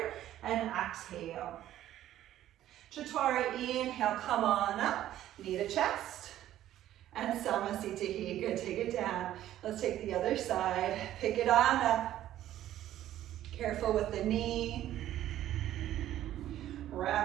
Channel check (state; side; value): quieter; left; 12.8 dB